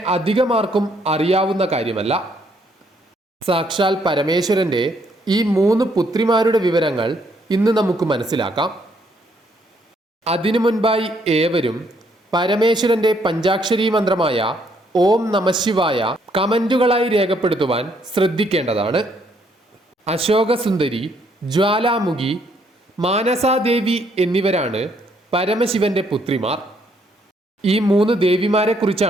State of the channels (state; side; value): normal; both; correlation 0.70